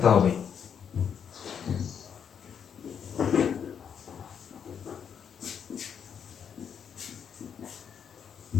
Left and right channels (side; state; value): right; quieter; 7.7 dB